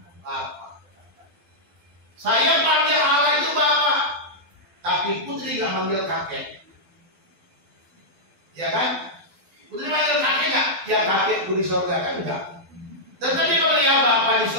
Saya panggil Allah itu Bapa. Tapi Putri gak manggil kakek. Ya kan? Putri manggil kakek gak? Ya kakekku di surga kan enggak. Dan tadi kalau ya Bapa di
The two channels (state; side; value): late; left; 12 ms